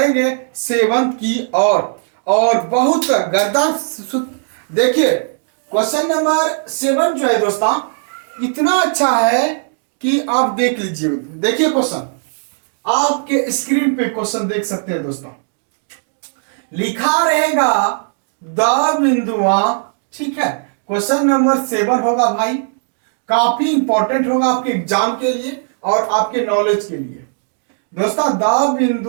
7 की और बहुत गर्दा देखिए क्वेश्चन नंबर 7 जो है दोस्तों इतना अच्छा है कि आप देख लीजिए। देखिए क्वेश्चन, आपके स्क्रीन पे क्वेश्चन देख सकते हैं दोस्तों। लिखा रहेगा द बिंदुआ, ठीक है। क्वेश्चन नंबर 7 होगा भाई, काफी इंपॉर्टेंट होगा आपके एग्जाम के लिए और आपके नॉलेज के लिए। दोस्तों द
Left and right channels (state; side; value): silent; left; digital silence